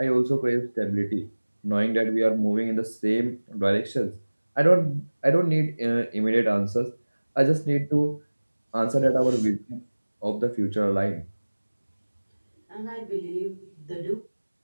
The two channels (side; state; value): both; inverted; correlation -1.00